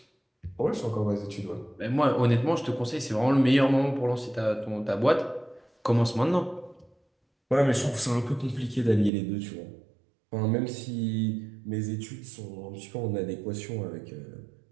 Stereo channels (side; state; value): left; drops out; at 9.1 s